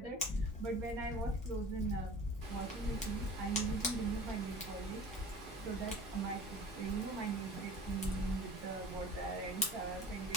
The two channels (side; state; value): both; normal; correlation 0.42